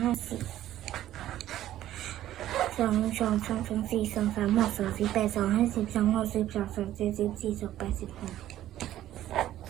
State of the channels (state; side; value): quieter; left; 13.1 dB